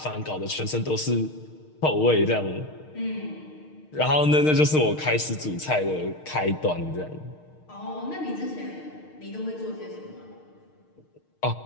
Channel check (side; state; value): right; late; 6.5 ms